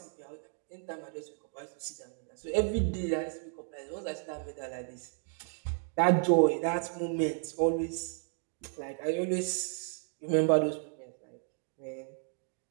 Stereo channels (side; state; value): left; silent; 55 dB below the other